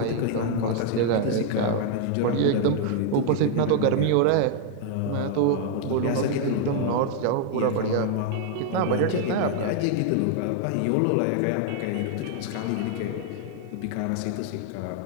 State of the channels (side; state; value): both; different; correlation 0.00